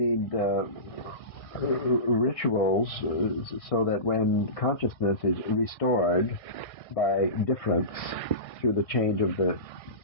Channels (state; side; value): late; right; 1.6 ms